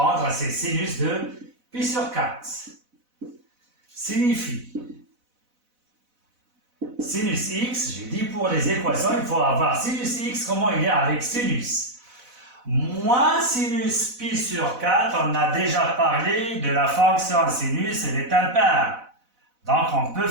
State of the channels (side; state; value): left; late; 4.0 ms